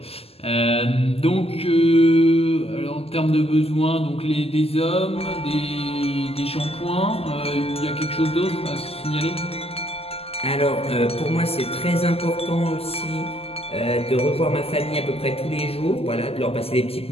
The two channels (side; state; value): right; late; 0.29 ms